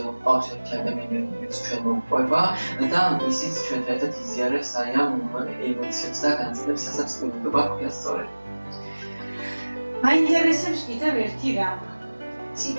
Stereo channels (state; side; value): inverted; both; correlation -1.00